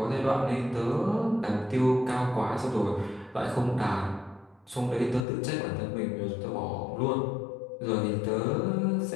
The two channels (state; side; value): drops out; right; at 5.2 s